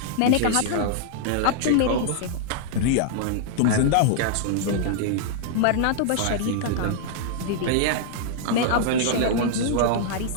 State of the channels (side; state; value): both; different; correlation -0.01